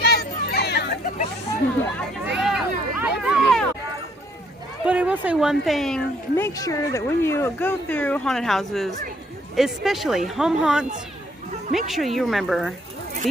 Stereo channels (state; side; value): normal; both; correlation 0.66